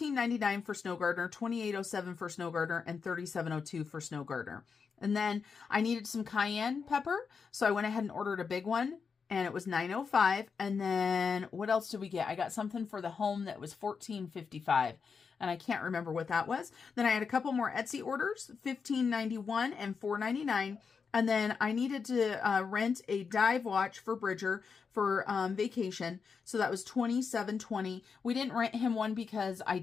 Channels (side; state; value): right; quieter; 5.7 dB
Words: for Snow Gardener, $28.07 for Snow Gardener, and $37.02 for Snow Gardener. And then I needed some cayenne pepper, so I went ahead and ordered a big one. And it was $9.05. And then what else did we get? I got something for the home that was $14.55. And I can't remember what that was. Then I had a couple more Etsy orders, $15.91 and $4.99. And then I needed to rent a dive watch for Bridger for vacation. So that was $27.20. We didn't rent him one because